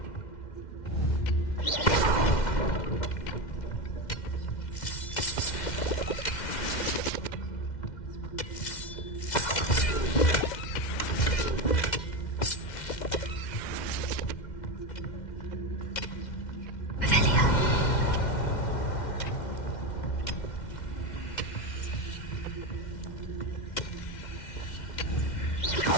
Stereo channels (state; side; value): late; right; 2.1 ms